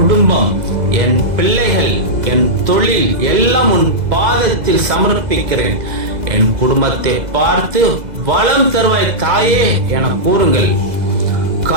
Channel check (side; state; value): left; late; 2.0 ms